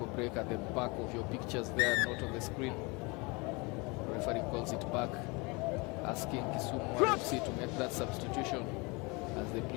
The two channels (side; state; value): right; quieter; 27.6 dB